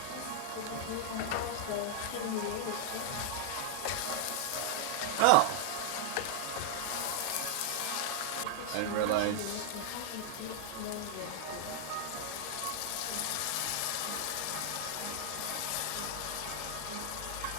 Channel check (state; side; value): different; both; correlation -0.01